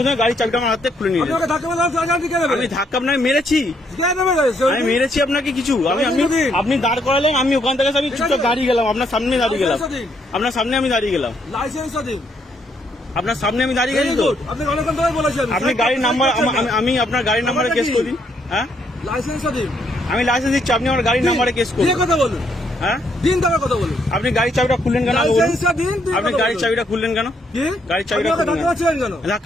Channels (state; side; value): normal; both; correlation 0.73